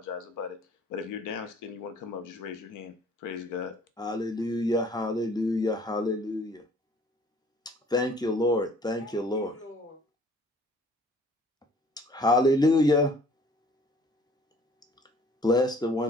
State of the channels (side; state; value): both; normal; correlation 0.55